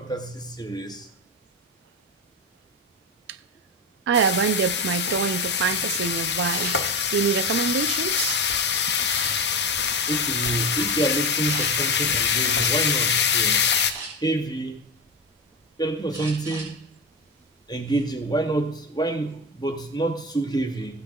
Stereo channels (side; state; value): both; normal; correlation 0.19